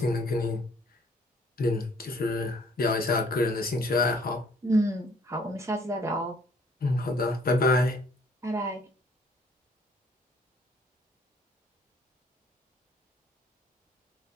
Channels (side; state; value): both; normal; correlation 0.60